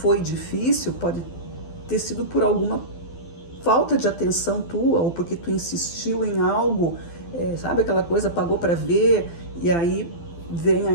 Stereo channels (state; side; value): late; right; 12 ms